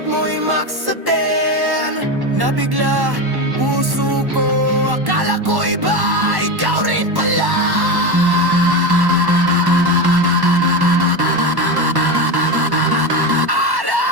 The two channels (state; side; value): late; left; 1.1 ms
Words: mo i-max sa 10. Nabigla puso ko, akala ko iba, ikaw rin pala.